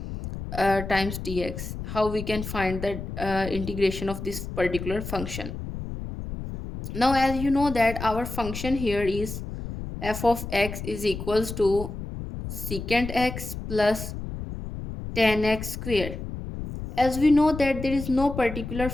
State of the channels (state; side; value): noise; left; rumble, 8 dB below the sound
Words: times dx. How we can find the integration of this particular function. Now, as you know that our function here is f of x is equals to secant x plus tan x square. As we know that there is no particular